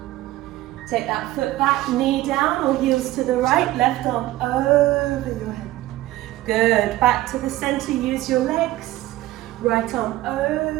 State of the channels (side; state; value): left; quieter; 16.4 dB